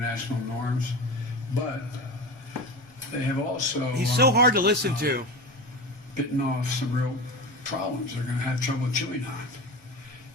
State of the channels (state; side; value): normal; both; correlation 0.27